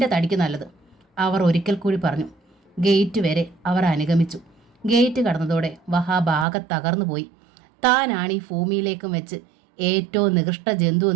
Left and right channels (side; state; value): left; drops out; at 6.5 s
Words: തടിക്ക് നല്ലത്, അവർ ഒരിക്കൽ കൂടി പറഞ്ഞു. ഗേറ്റ് വരെ അവർ അനുഗമിച്ചു. ഗേറ്റ് കടന്നതോടെ വഹാബ് ആകെ തകർന്നു പോയി. താനാണ് ഈ ഭൂമിയിലേക്കും വെച്ച് ഏറ്റവും നികൃഷ്ട ജന്തു